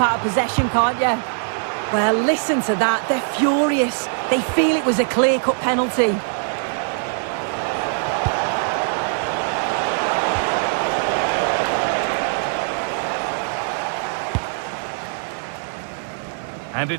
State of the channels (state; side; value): silent; left; 57 dB below the other